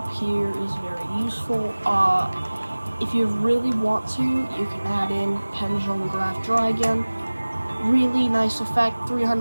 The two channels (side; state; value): both; inverted; correlation -1.00